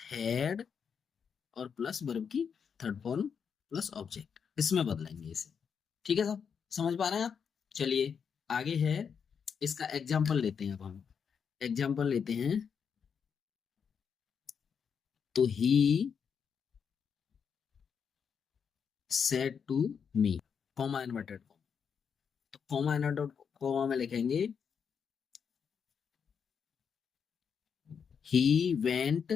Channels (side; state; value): right; quieter; 6.8 dB